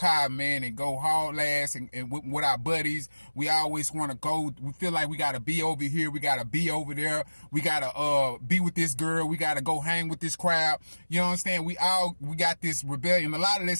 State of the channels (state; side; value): inverted; both; correlation -1.00